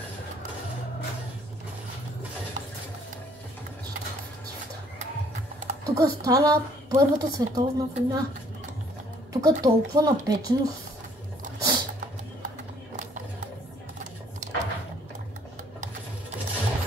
Тук стана Първата световна война. Тук толкова напеченост.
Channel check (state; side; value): normal; both; correlation 0.62